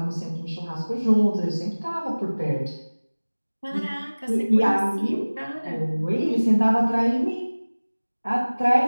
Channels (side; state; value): both; inverted; correlation -1.00